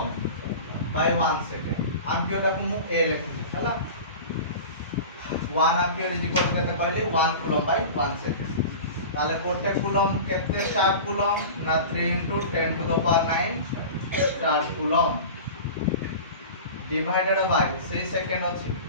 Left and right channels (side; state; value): both; inverted; correlation -0.34